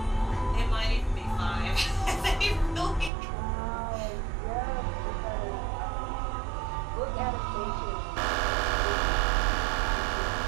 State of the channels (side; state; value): left; drops out; at 3.1 s